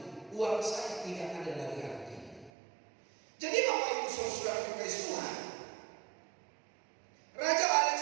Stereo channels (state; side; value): drops out; left; at 2.5 s